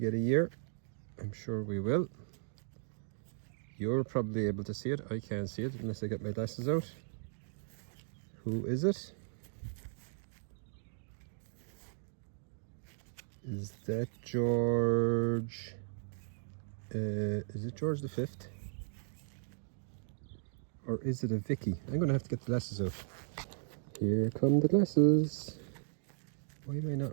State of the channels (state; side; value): silent; left; digital silence